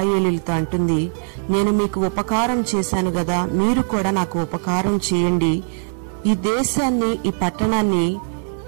అంటుంది, నేను మీకు ఉపకారం చేశాను గదా, మీరు కూడా నాకు ఉపకారం చేయండి. ఈ దేశాన్ని, ఈ పట్టణాన్ని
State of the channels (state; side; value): silent; left; 59 dB below the other